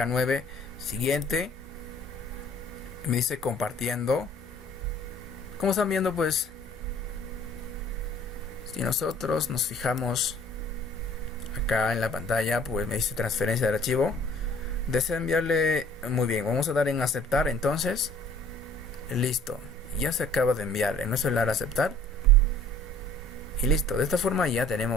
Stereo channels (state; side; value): normal; both; correlation 0.53